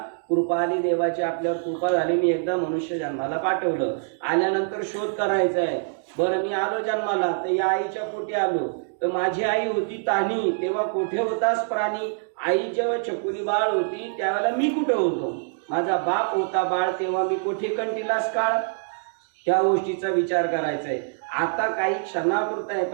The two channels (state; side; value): silent; left; digital silence